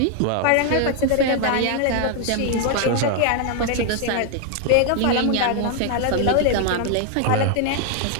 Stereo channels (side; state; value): both; different; correlation 0.00